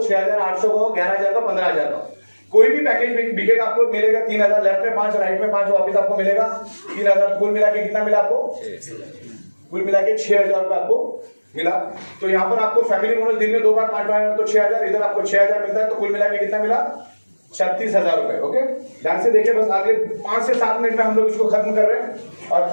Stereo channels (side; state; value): both; inverted; correlation -1.00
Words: का हो, 11,000 का, 15,000 का, कोई भी पैकेज बिकेगा आपको मिलेगा 3,000। लेफ्ट में 5 राइट में 5 वापिस आपको मिलेगा 3,000। कुल मिला के कितना मिला आपको? कुल मिला के 6,000 रुपए आपको मिला। तो यहाँ पर आपको फैमिली बोनस दिन में 2 बार 5 तो 6,000, इधर आपको 6,000 मिलता है। तो कुल मिला के कितना मिला? 36,000 रुपए। ओके, ध्यान से देखिए, बस आगे 5 से 7 मिनट में हम लोग इसको खत्म कर रहे हैं। और